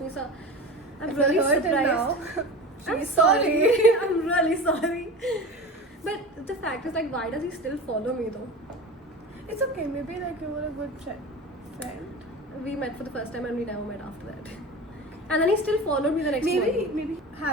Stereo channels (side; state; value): both; normal; correlation 0.32